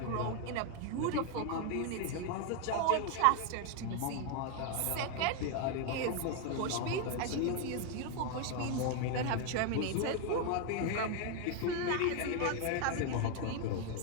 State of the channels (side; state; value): both; different; correlation 0.01